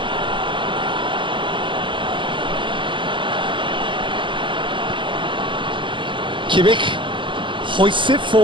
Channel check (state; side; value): late; left; 0.24 ms